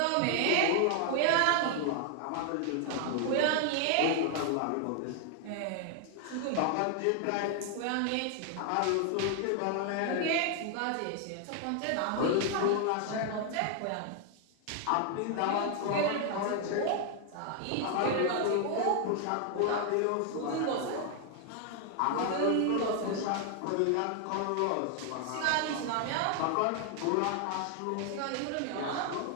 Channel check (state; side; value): different; both; correlation 0.00